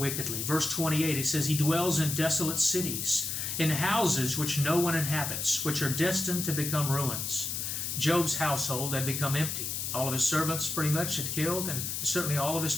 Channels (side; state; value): left; noise; hiss, 3 dB below the sound